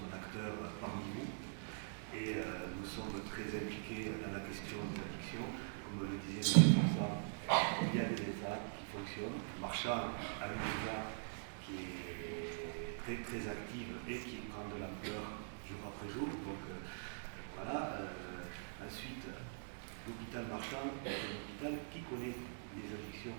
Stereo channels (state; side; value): silent; left; digital silence